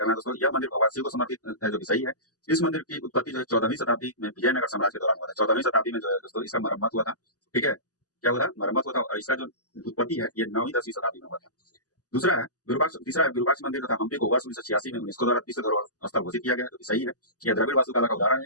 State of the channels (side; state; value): right; late; 0.67 ms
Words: है दोस्तों। यह मंदिर भगवान शिव को समर्पित है, जो कि सही है। इस मंदिर की उत्पत्ति जो है 14वीं शताब्दी में विजयनगर साम्राज्य के दौरान हुआ था। 14वीं शताब्दी में जो है दोस्तों इसका मरम्मत हुआ था। ठीक है, क्या हुआ था, मरम्मत हुआ था। और इसका जो उत्पत्ति है ये 9वीं 10वीं शताब्दी में हुआ था। दूसरा है विरूपाक्ष, तीसरा है विरूपाक्ष मंदिर तथा हम्पी को वर्ष 1986 में यूनेस्को द्वारा विश्व धरोहर स्थल घोषित किया गया, जो कि सही है। यह द्रविड़ वास्तुकला का उदाहरण